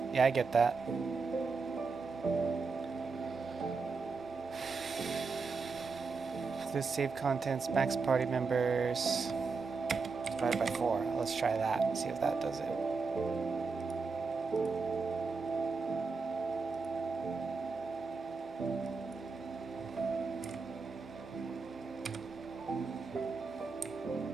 Yeah, I get that. This save contents, max party members, divided by 4. Let's try that, see if that does it.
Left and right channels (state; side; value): quieter; left; 4.6 dB